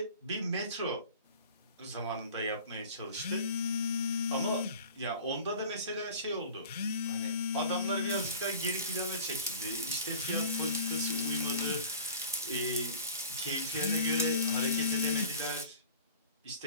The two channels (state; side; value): inverted; both; correlation -0.41